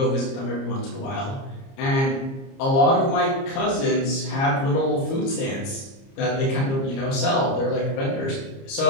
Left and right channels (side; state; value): right; late; 30 ms